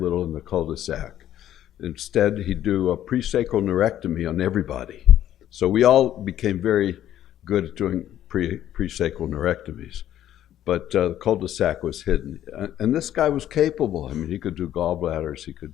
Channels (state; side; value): quieter; right; 11.8 dB